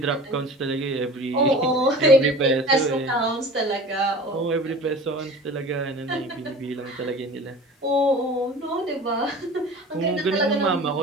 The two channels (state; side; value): normal; both; correlation 0.40